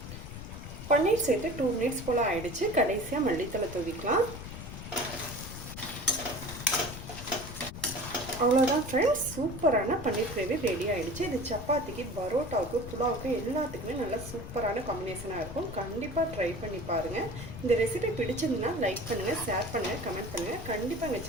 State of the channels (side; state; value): left; noise; rumble, 10 dB below the sound